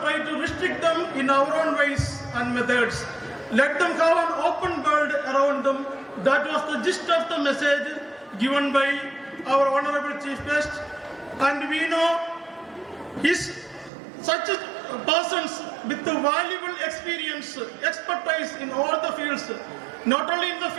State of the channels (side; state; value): left; drops out; at 13.9 s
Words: try to restrict them in our own ways and methods. Let them have an open world around them. That was the gist of the message given by our honorable chief guest. And we know such persons with the valuable experience, expertise in all the fields, not only in the